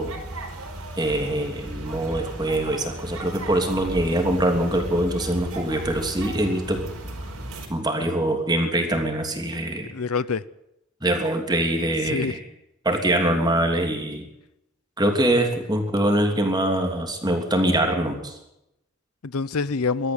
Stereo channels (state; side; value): normal; both; correlation 0.53